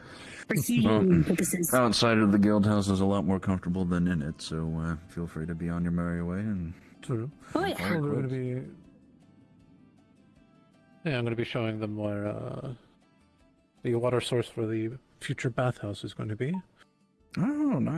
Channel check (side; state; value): both; identical; correlation 1.00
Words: For heating purposes. Outside of the guild house is a lot more comfortable than in it, so feel free to be on your merry way and. True. Oh yeah. I'm going to be. Yeah, I'm going to be showing them where the water source for the future bathhouse is going to be. Oh,